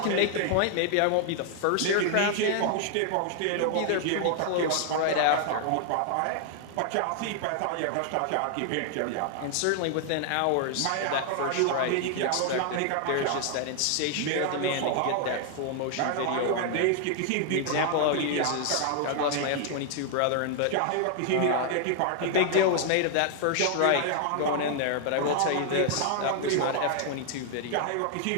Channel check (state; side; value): different; both; correlation 0.00